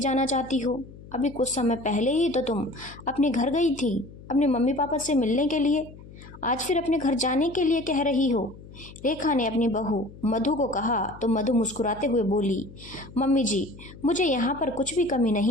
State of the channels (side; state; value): left; noise; hum, 18 dB below the sound